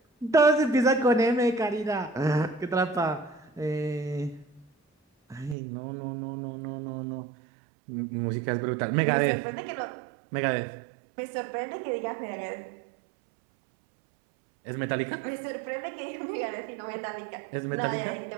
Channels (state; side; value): drops out; left; at 5.6 s